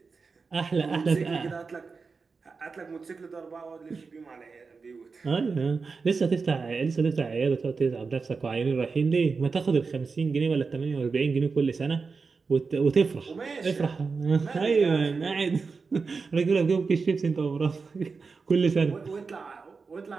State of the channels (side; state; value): left; quieter; 4.7 dB